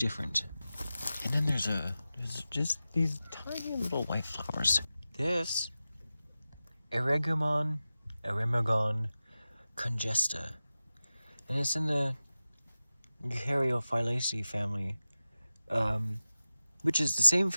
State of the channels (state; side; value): inverted; both; correlation -0.94